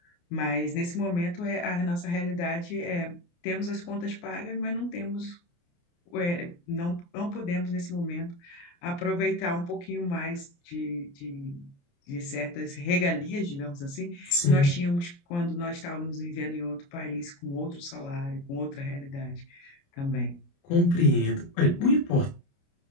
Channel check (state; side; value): late; right; 29 ms